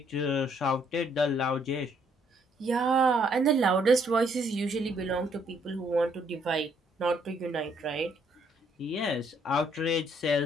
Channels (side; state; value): both; normal; correlation 0.68